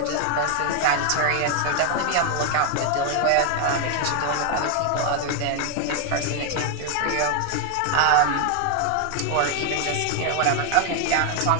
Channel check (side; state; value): both; different; correlation 0.01